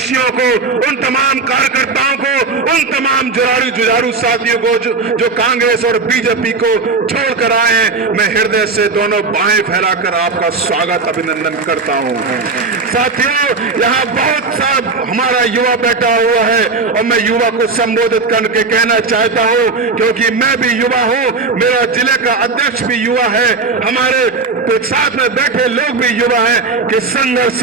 को, उन तमाम कार्यकर्ताओं को, उन तमाम जुझारू साथियों को जो कांग्रेस और बीजेपी को छोड़कर आए हैं, मैं हृदय से दोनों बाहें फैलाकर आपका स्वागत अभिनंदन करता हूं। साथियों, यहाँ बहुत सा हमारा युवा बैठा हुआ है और मैं युवा को संबोधित करके कहना चाहता हूं, क्योंकि मैं भी युवा हूं, मेरा जिले का अध्यक्ष भी युवा है, हमारे साथ में बैठे लोग भी युवा हैं, कि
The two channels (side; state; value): left; quieter; 4.1 dB